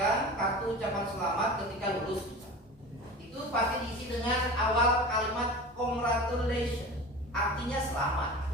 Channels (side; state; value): both; normal; correlation 0.33